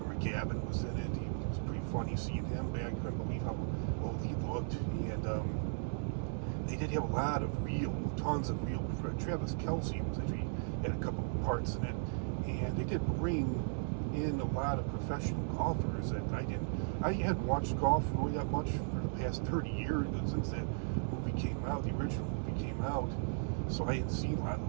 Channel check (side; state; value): left; silent; digital silence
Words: McGavin was in it. He was pretty funny seeing him back. I couldn't believe how old he looked. And they did have tons of real. Travis Kelce had a couple of parts in it, and they did bring in a lot of professional golfers that I hadn't watched golf really that much for the past 30 years since that movie came out, the original movie came out. So I hadn't seen a lot of